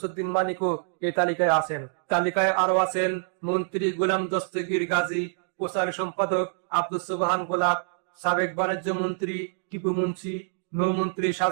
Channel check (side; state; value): left; silent; digital silence